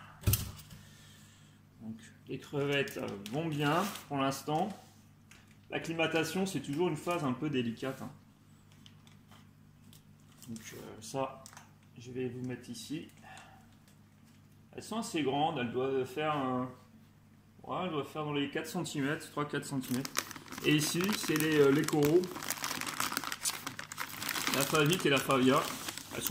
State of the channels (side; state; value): both; identical; correlation 1.00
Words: Donc, les crevettes vont bien pour l'instant. L'acclimatation, c'est toujours une phase un peu délicate. Hein. Donc ça, je vais vous mettre ici. Elles sont assez grandes, elles doivent faire, elles doivent faire dans les 4 cm, 3-4 cm. Et ici, c'est les coraux. La favite et la favia. Elles